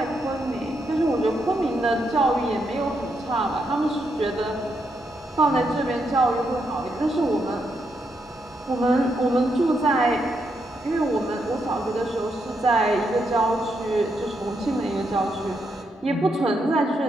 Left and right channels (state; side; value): normal; both; correlation 0.80